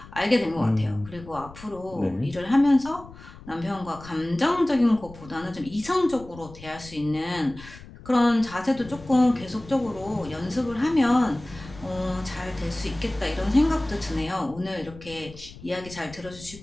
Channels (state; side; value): noise; left; rumble, 18 dB below the sound